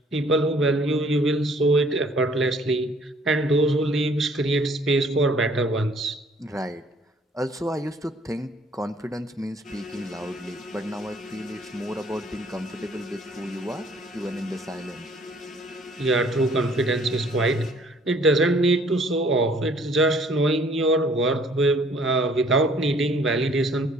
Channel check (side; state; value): both; normal; correlation 0.59